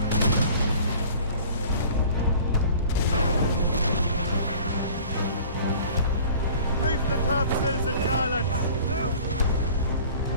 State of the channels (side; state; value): both; inverted; correlation -0.47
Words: Reef the topsails and gallants!